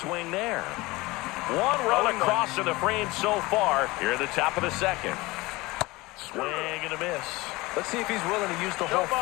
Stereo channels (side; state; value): right; quieter; 21.6 dB